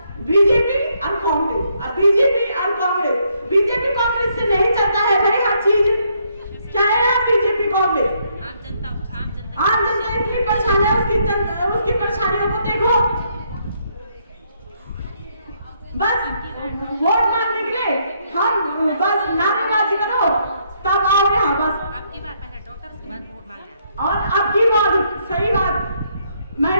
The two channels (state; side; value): inverted; both; correlation -0.72